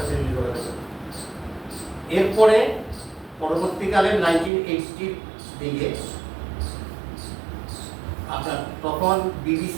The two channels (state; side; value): drops out; left; at 4.5 s